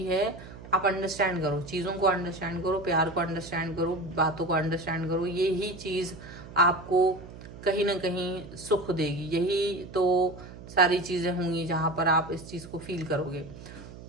है, आप अंडरस्टैंड करो, चीजों को अंडरस्टैंड करो, प्यार को अंडरस्टैंड करो, बातों को अंडरस्टैंड करो। यही चीज आपको कहीं ना कहीं सुख देगी। यही तो सारी चीजें होंगी जहां पर आप इस चीज को फील करोगे।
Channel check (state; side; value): noise; right; hum, 15 dB below the sound